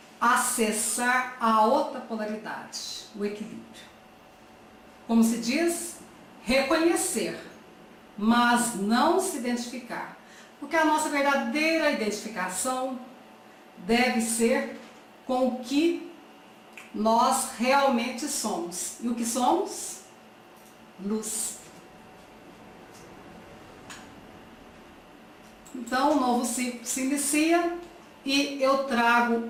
acessar a outra polaridade, o equilíbrio. Como se diz, reconhecer, mas não se identificar. Porque a nossa verdadeira identificação deve ser com o que nós realmente somos. E o que somos? Luz. Então, o novo ciclo se inicia e eu trago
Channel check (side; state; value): both; identical; correlation 1.00